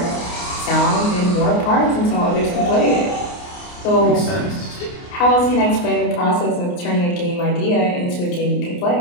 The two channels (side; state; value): right; late; 29 ms